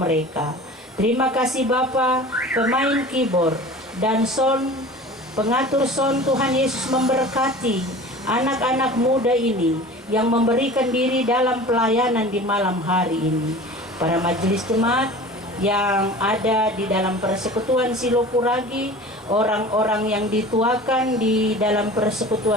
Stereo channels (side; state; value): both; normal; correlation 0.39